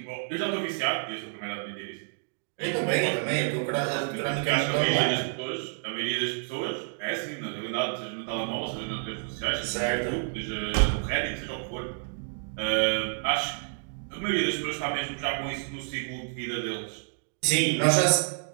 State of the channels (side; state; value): left; silent; 59 dB below the other